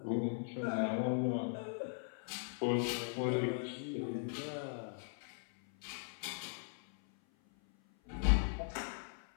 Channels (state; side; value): silent; right; 52 dB below the other